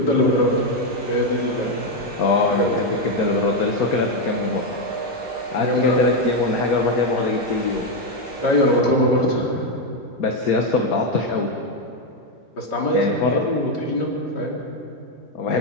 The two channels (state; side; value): normal; both; correlation 0.05